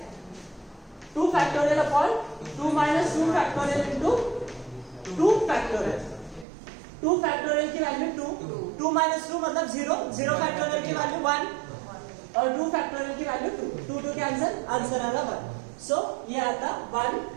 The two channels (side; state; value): left; drops out; at 6.5 s